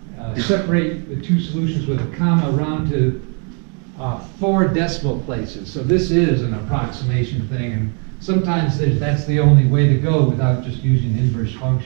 separate the two solutions with a comma around to 4 decimal places. So this is an approximation thing, and sometimes that's the only way to go without just using inverse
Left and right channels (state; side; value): quieter; left; 38.9 dB